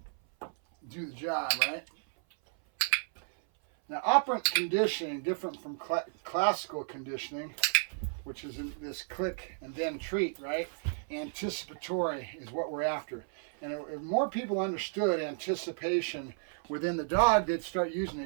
the job, right? Now, operant conditioning, different from classical conditioning, which is in this click and then treat, right? Anticipatory is what we're after. And if more people understood anticipation within the dog, they'd start using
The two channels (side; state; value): left; silent; 56 dB below the other